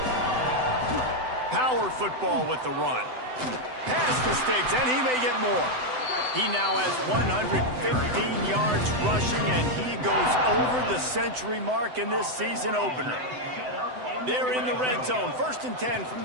Power football with the run. Pass the sticks, and he may get more. He now has 115 yards rushing, and he goes over the century mark in this season opener. They're in the red zone, 1st and 10 from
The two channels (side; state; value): left; late; 7.9 ms